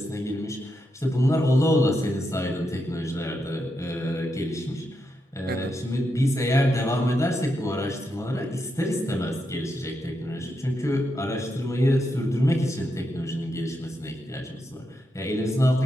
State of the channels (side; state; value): both; normal; correlation 0.84